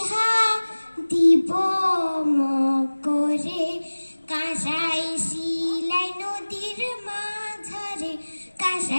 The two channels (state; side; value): inverted; both; correlation -1.00